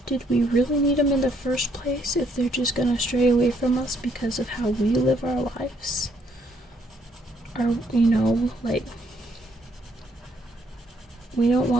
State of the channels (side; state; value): both; normal; correlation 0.69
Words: did we really need them in the first place if they're just gonna stray away from us because of how we live our lives? Or, like, we don't